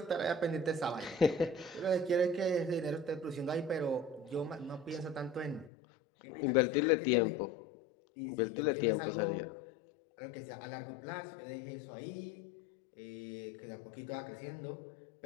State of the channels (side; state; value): right; drops out; at 5.7 s